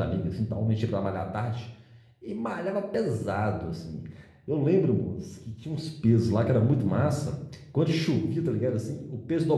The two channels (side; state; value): both; identical; correlation 1.00